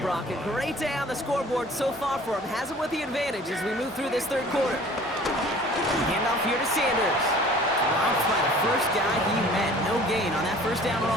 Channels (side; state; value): both; normal; correlation 0.48